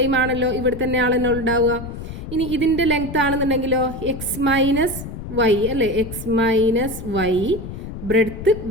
ആണല്ലോ, ഇവിടെ തന്നെയാണല്ലോ ഉണ്ടാവുക. ഇനി ഇതിൻ്റെ ലെങ്ത്ത് ആണെന്നുണ്ടെങ്കിലോ എക്സ് മൈനസ് വൈ അല്ലേ, x minus y, breadth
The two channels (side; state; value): left; noise; rumble, 9 dB below the sound